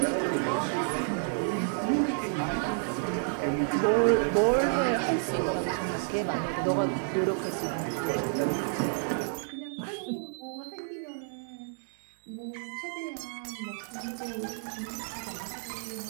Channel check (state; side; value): silent; left; digital silence